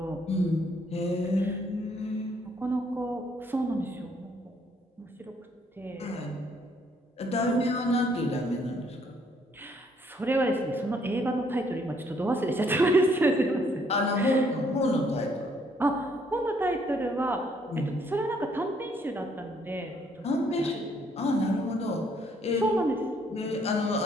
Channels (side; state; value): both; normal; correlation 0.67